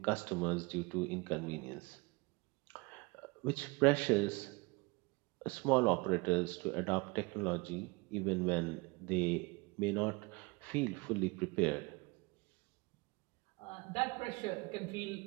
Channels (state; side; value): quieter; left; 26.3 dB